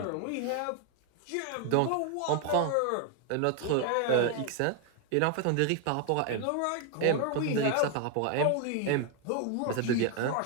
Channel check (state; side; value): different; both; correlation 0.01